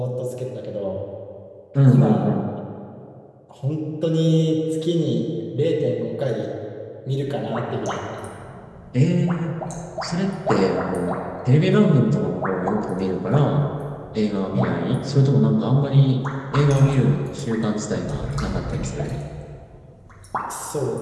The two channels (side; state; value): both; identical; correlation 1.00